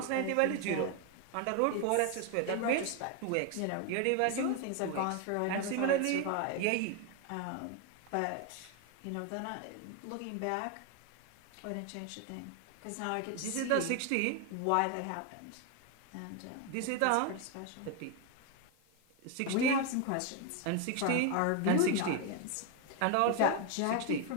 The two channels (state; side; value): different; both; correlation 0.01